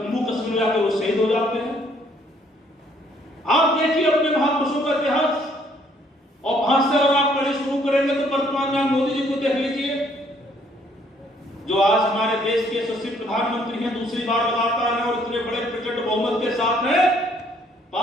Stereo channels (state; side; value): normal; both; correlation 0.65